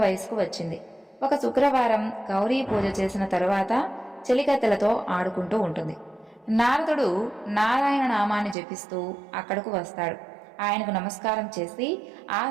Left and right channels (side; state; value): left; drops out; at 8.6 s